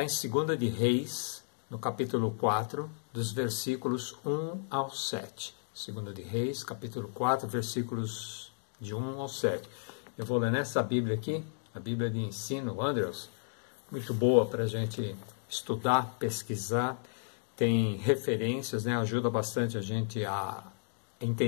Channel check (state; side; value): silent; right; digital silence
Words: em 2 de Reis, no capítulo 4, dos versículos 1 ao 7. 2 de Reis, capítulo 4, versículos de 1 ao 7. Eu vou ler nessa Bíblia aqui, a Bíblia de ensino, Andrews, muito boa para a gente estudar, pesquisar, tem referências, né? Ajuda bastante a gente a